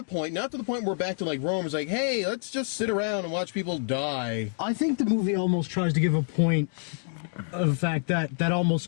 point. Not to the point where we're back to Rome. It's like, hey, let's just sit around and watch people die. I think the movie almost tries to give a point of the fact that almost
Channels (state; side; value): silent; right; digital silence